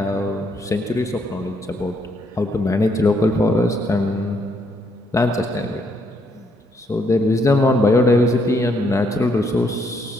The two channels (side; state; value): both; normal; correlation 0.73